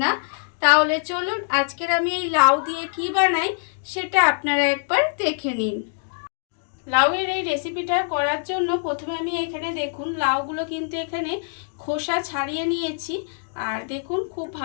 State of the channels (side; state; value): right; silent; digital silence